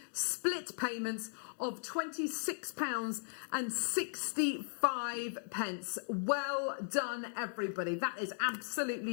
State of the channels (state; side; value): silent; right; digital silence